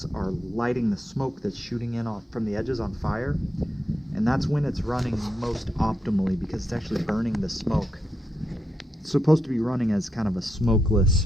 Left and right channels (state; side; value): normal; both; correlation 0.83